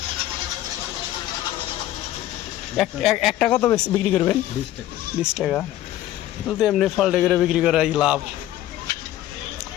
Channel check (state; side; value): quieter; right; 13.7 dB